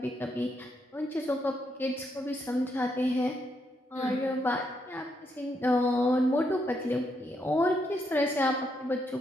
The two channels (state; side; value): normal; both; correlation 0.78